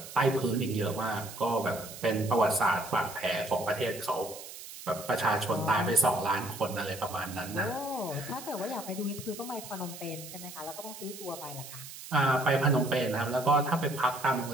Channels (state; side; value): noise; right; hiss, 13 dB below the sound